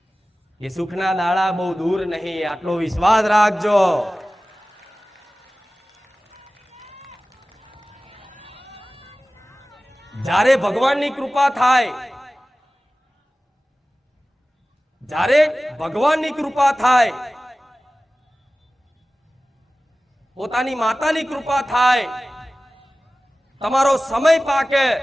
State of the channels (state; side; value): normal; both; correlation 0.97